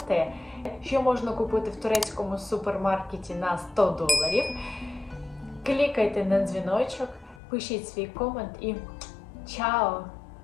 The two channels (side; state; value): right; drops out; at 7.4 s